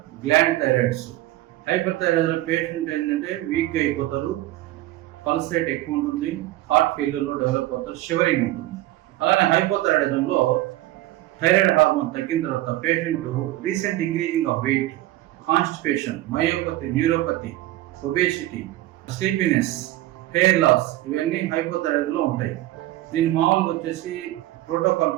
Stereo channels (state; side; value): quieter; left; 16.1 dB